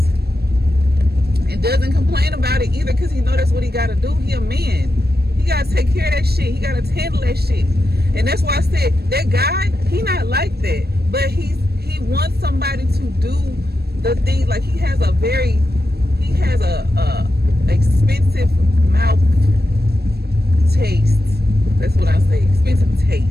and doesn't complain about it either, because he know that's what he got to do. He a man. He got to take care of that shit. He got to handle that shit. And that's why I said that guy, he not like that, but he wants somebody to do the thing. Like, he has a expensive mouth taste. That's what I say, expensive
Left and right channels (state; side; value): late; left; 0.47 ms